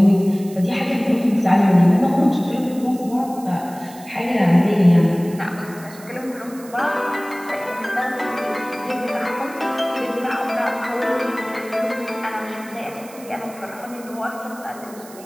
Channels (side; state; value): right; noise; hiss, 20 dB below the sound